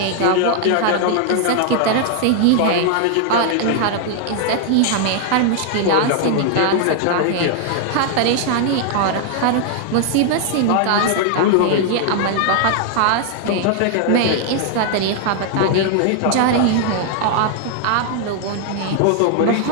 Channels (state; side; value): different; both; correlation 0.00